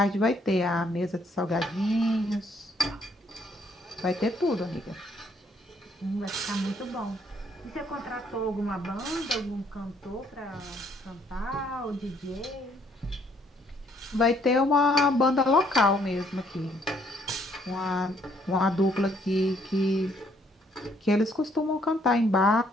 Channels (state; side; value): normal; both; correlation 0.67